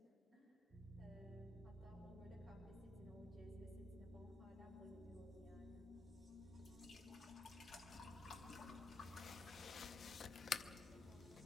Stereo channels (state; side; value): quieter; right; 3.3 dB